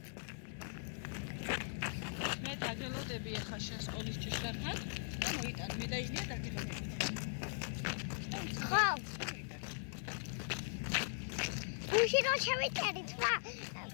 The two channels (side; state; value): right; silent; digital silence